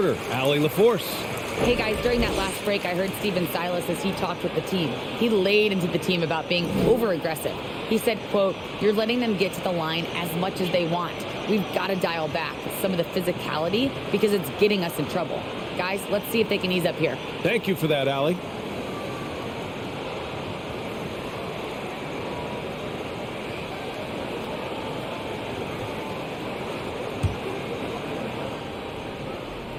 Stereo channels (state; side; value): identical; both; correlation 1.00